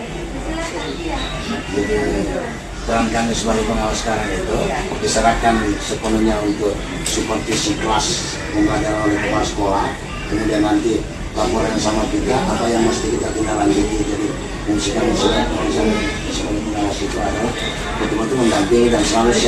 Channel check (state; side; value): identical; both; correlation 1.00